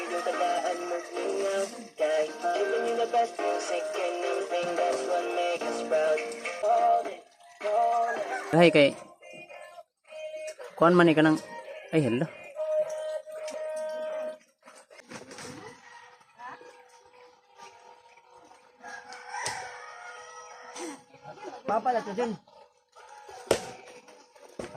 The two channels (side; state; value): both; identical; correlation 1.00